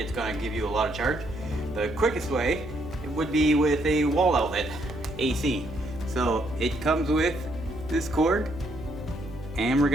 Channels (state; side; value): noise; right; hum, 15 dB below the sound